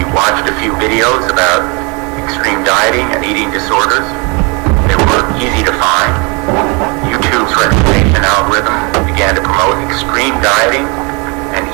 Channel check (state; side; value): quieter; left; 30.5 dB